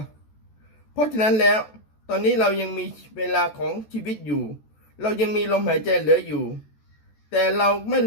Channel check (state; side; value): late; right; 14 ms